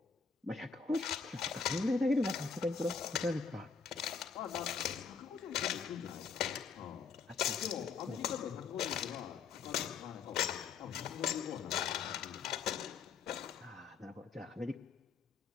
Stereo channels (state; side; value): quieter; right; 5.4 dB